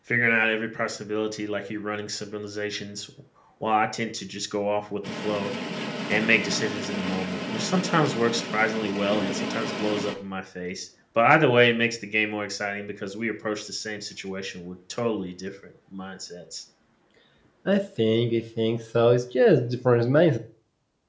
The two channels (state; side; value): identical; both; correlation 1.00